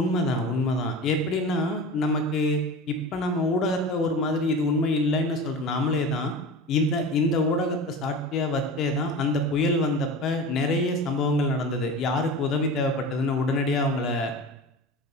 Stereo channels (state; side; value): normal; both; correlation 0.32